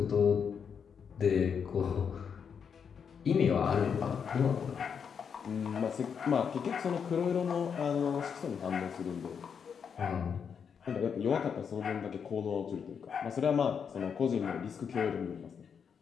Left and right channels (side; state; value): right; quieter; 6.9 dB